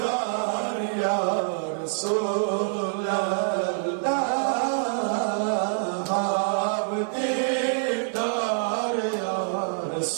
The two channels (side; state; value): left; silent; digital silence